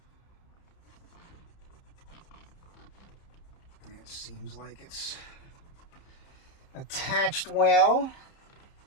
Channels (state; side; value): late; right; 30 ms